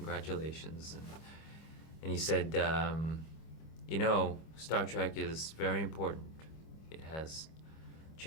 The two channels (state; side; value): late; right; 25 ms